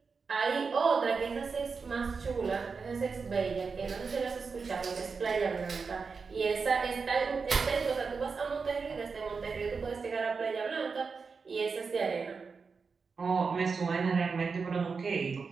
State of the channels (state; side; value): quieter; left; 5.0 dB